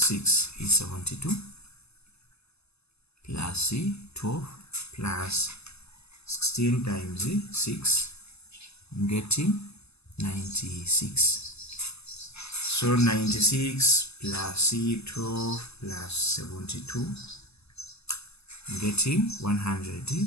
is 72 plus 12 plus 16 times 6, I'm getting 96. So 96 plus 12 plus 72, I'm getting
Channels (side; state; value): right; late; 0.79 ms